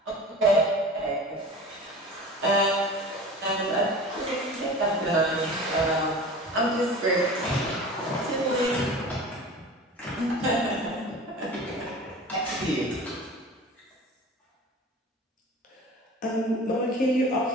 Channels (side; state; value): both; normal; correlation 0.38